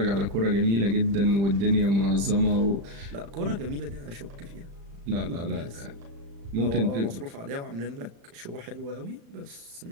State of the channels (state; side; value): late; left; 35 ms